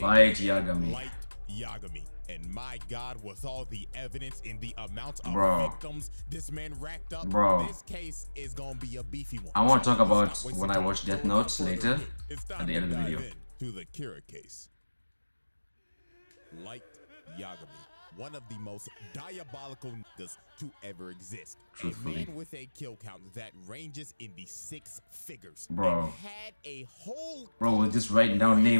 Yagami. Light Yagami. And my God, with all the evidence and the amount of victims this man racked up, this case is gonna be a beefy one. I want to talk about when I watch Death Note later at the end of the video. To the Kira case. Light Yagami, one of the most diabolical niggas to ever exist. Truthfully. A man with a kill count that ranges in the 6 figures. Bro. And had a whole we're just writing down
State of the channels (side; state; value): both; inverted; correlation -1.00